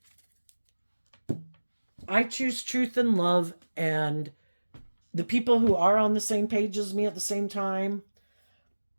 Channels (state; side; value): inverted; both; correlation -1.00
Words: I choose truth and love, and the people who are on the same page as me at the same time